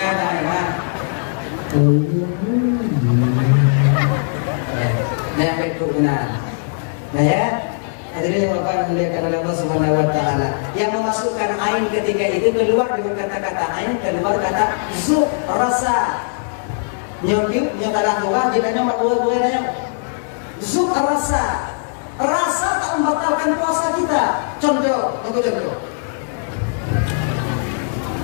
daerah nempel turunan nah ya hadirin bapak memuliakan Allah Subhanahu wa taala yang memasukkan ain ketika itu keluar dengan kata-kata ain keluar kata zu rasa nyodip nyotalah dua jadinya mak dua nanya zuk rasa tak membatalkan puasa kita. Contoh, untuk contoh.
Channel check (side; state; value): right; silent; digital silence